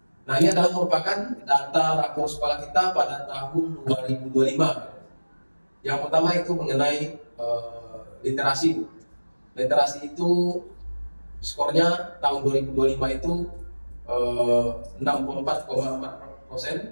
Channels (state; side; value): inverted; both; correlation -1.00